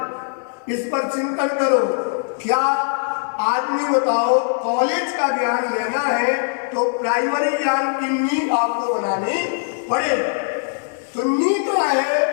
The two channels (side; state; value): right; silent; digital silence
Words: इस पर चिंतन करो। क्या आदमी बताओ कॉलेज का ज्ञान लेना है तो प्राइमरी ज्ञान की नींव आपको बनानी पड़े, तो नींव तो